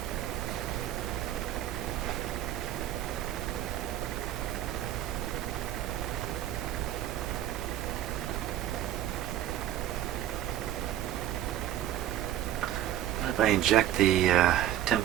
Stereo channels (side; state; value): left; quieter; 12.4 dB